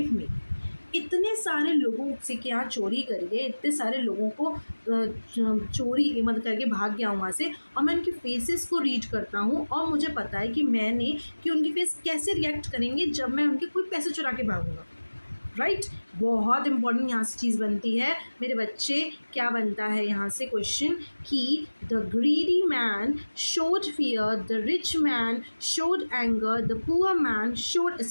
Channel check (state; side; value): inverted; both; correlation -1.00